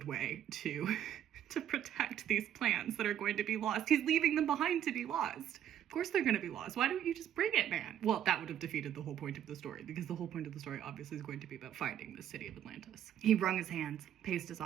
way to protect these plans that are going to be lost. He's leaving them behind to be lost. Of course they're going to be lost. Why don't you just bring it, man? Well, that would have defeated the whole point of the story, because the whole point of the story obviously is going to be about finding the city of Atlantis. He wrung his hands, paced his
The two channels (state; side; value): quieter; left; 10.5 dB